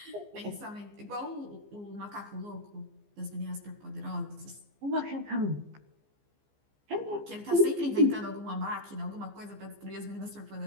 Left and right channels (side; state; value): left; late; 15 ms